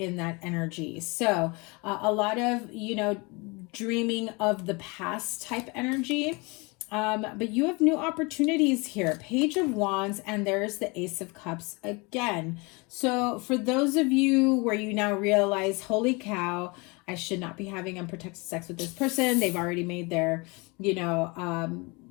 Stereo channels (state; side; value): quieter; right; 27.8 dB